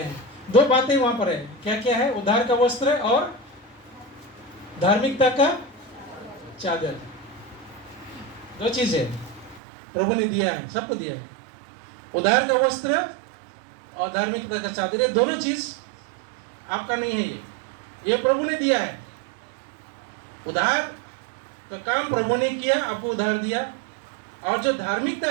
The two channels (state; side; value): drops out; left; at 9.6 s